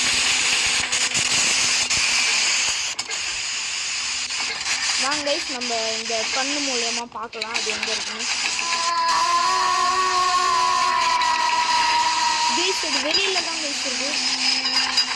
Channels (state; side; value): identical; both; correlation 1.00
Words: வாங்க கைஸ், நம்ம இந்த கண்ணு மூலமாக பார்க்கலாம் அது எங்கே இருக்குன்னு. இது வெளியில தான் இருக்குது.